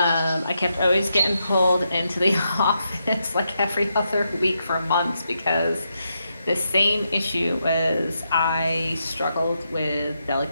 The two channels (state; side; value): inverted; both; correlation -0.83